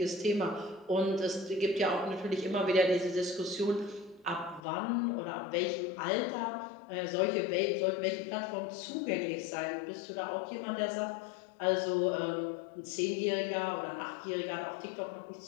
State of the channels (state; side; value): drops out; right; at 4.6 s